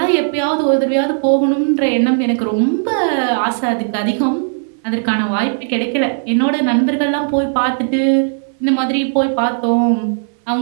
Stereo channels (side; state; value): left; silent; 62 dB below the other